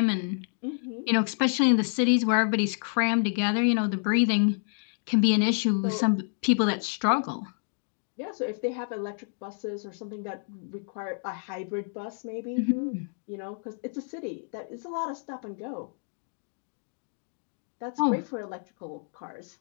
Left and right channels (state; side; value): silent; right; 59 dB below the other